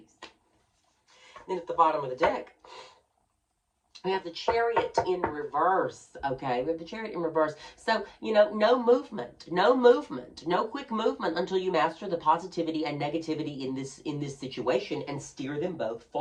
Then at the bottom of the deck, we have the Chariot in reverse, okay? We have the Chariot in reverse. So, you know, no movement, no quick movement until you master the positivity and negativity in this situation and steer them both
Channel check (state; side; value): identical; both; correlation 1.00